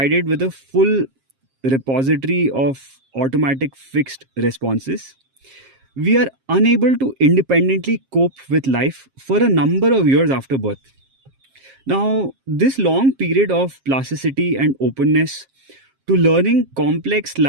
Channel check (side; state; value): left; late; 7.5 ms